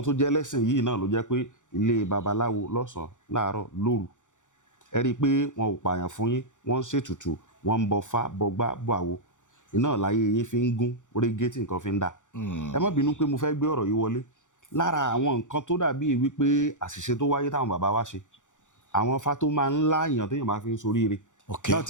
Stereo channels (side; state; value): right; late; 0.86 ms